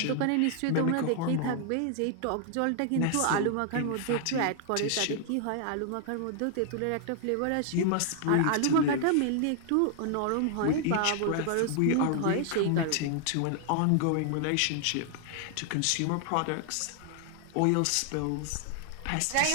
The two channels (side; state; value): both; different; correlation 0.00